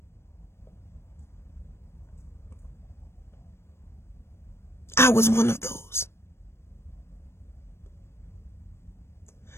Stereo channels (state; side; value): late; right; 0.12 ms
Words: I was one of those.